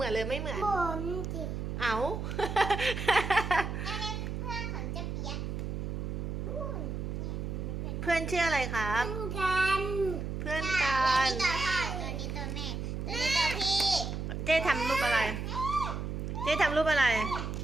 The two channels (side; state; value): right; noise; hum, 4 dB below the sound